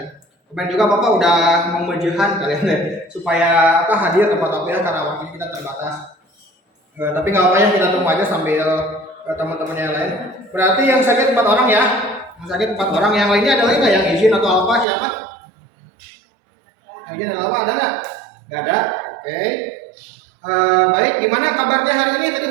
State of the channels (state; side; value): drops out; left; at 14.9 s